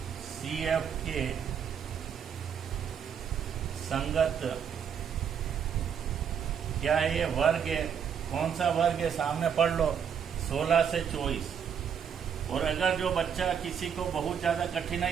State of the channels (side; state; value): left; quieter; 7.7 dB